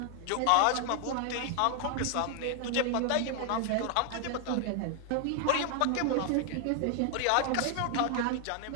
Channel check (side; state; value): both; different; correlation 0.00